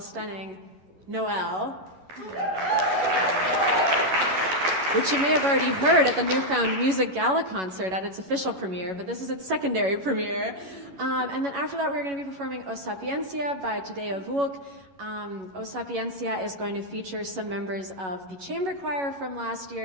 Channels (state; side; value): late; left; 11 ms